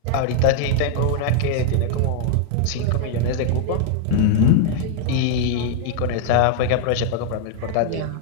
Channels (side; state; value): both; different; correlation 0.00